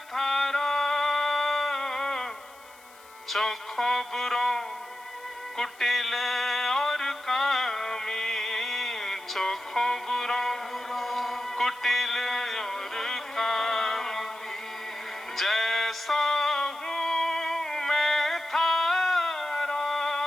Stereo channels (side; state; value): left; noise; hiss, 25 dB below the sound